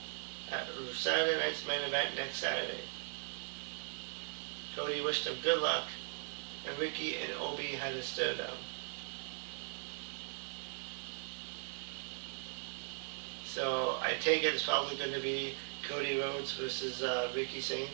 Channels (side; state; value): left; silent; digital silence